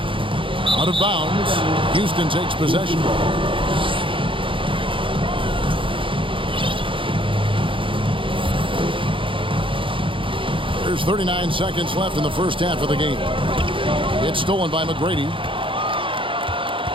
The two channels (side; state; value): left; late; 0.25 ms